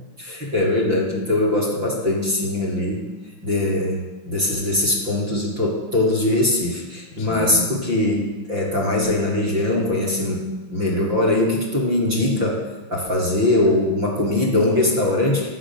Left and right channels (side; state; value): left; late; 5.9 ms